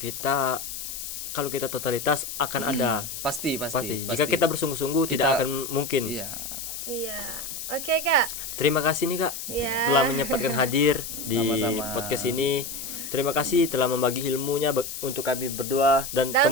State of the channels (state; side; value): noise; left; hiss, 7 dB below the sound